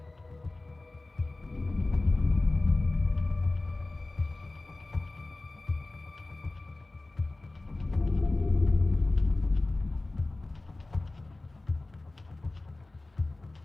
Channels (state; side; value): quieter; right; 3.0 dB